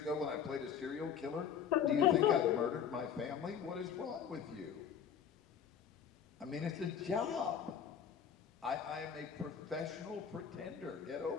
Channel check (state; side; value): quieter; right; 8.0 dB